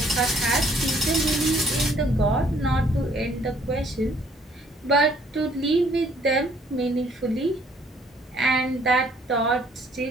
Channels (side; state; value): both; normal; correlation 0.62